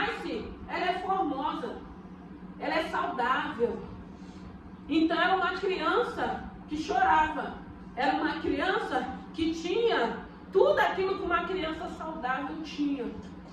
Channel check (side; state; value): both; identical; correlation 1.00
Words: ela é formosa, ela é saudável. Então era uma criança que chorava, era uma criança que tinha tudo aquilo que uma criança saudável tinha.